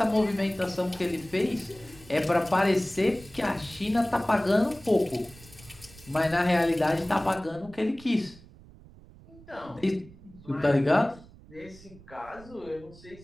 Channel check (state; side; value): noise; right; rumble, 21 dB below the sound